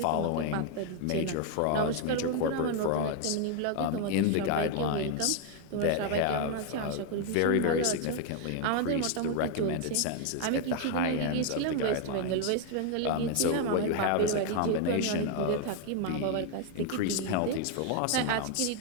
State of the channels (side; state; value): both; different; correlation 0.00